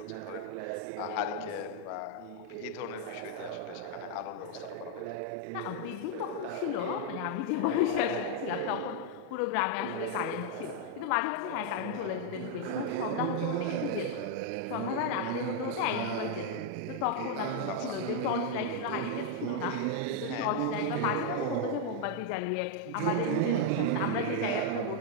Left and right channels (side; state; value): both; different; correlation 0.00